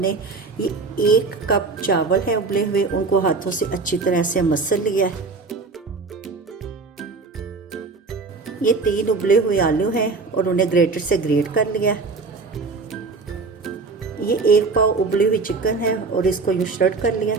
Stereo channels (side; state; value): left; quieter; 4.1 dB